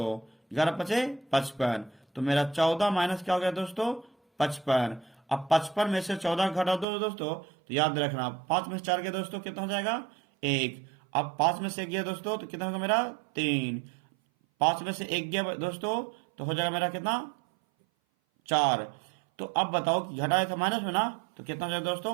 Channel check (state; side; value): drops out; left; at 6.9 s